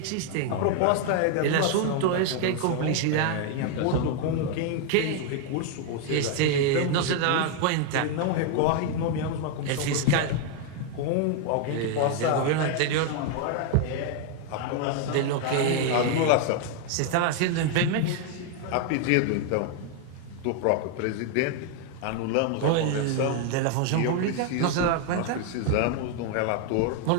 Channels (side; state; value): both; different; correlation 0.00